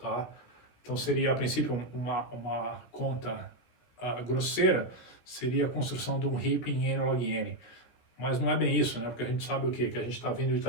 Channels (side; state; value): right; late; 17 ms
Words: Então seria a princípio uma conta grosseira seria a construção de um heap em n log n. Mas não é bem isso, né? Porque a gente sabe o quê? Que a gente está vindo de